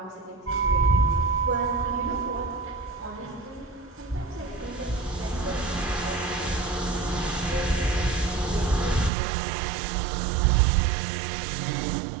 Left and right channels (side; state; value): left; drops out; at 9.1 s